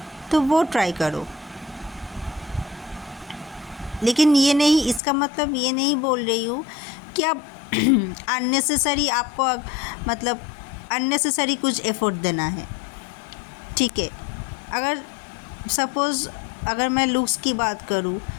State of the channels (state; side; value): drops out; right; at 5.0 s